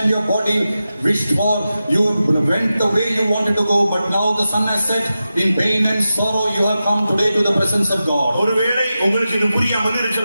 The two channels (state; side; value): inverted; both; correlation -0.92